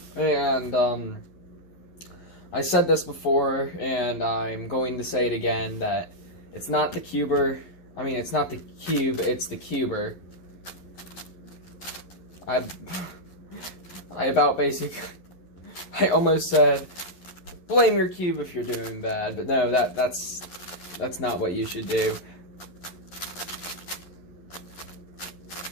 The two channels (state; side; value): late; right; 11 ms